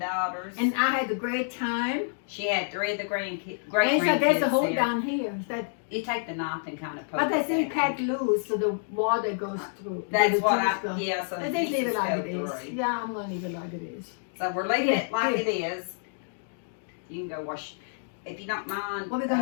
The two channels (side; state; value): right; silent; digital silence